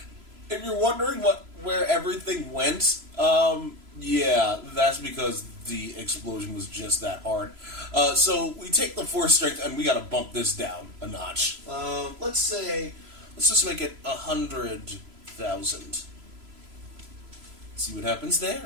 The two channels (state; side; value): late; left; 3.0 ms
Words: If you're wondering where everything went, yeah, that's because the explosion was just that hard. So we take the force strength and we gotta bump this down a notch. Let's just make it 100,000. See what happens